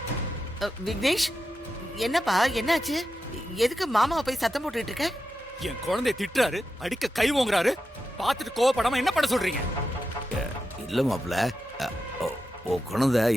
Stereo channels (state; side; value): normal; both; correlation 0.89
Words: விக்னேஷ், என்னப்பா என்னாச்சு? எதுக்கு மாமாவை போய் சத்தம் போட்டுட்டு இருக்க? என் குழந்தைய திட்டுறாரு, அடிக்க கை ஓங்குறாரு. பார்த்துட்டு கோவப்படாம என்ன பண்ண சொல்றீங்க? இல்ல மாப்ள, ஓ குழந்தை